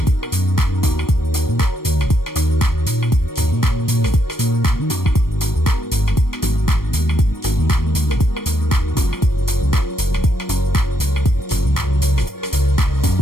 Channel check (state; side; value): late; right; 0.93 ms